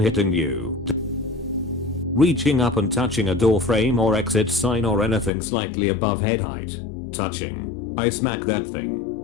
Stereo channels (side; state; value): right; drops out; at 5.3 s